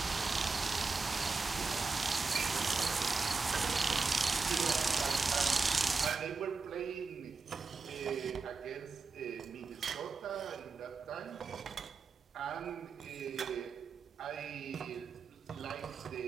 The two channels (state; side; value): quieter; left; 4.4 dB